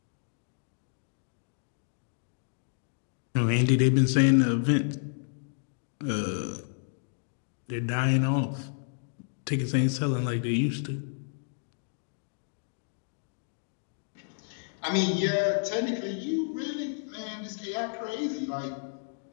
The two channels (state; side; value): silent; right; digital silence